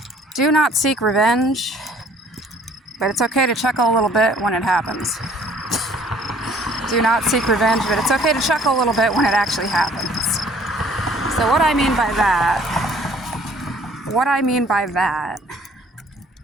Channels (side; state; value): both; normal; correlation 0.57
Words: Do not seek revenge, but it's okay to chuckle a little bit when it happens. Do not seek revenge, but it's okay to chuckle a little bit when it actually happens. So what I mean by that,